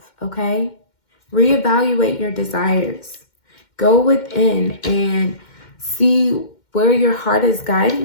okay? Reevaluate your desires. Go within and see where your heart is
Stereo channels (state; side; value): late; right; 2.1 ms